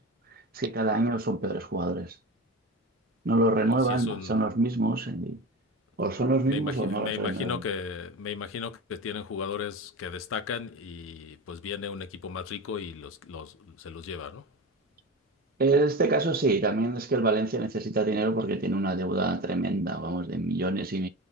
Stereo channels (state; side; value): normal; both; correlation 0.28